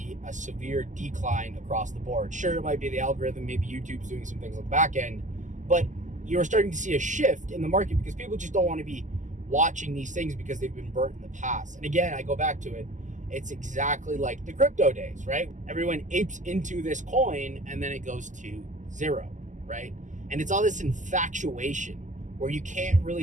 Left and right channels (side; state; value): left; late; 0.36 ms